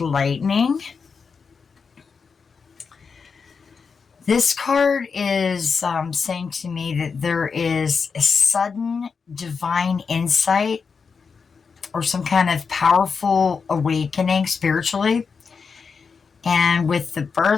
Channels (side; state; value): right; quieter; 5.4 dB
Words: Lightning, this card is saying to me that there is a sudden divine insight or some kind of powerful awakening spiritually. And with the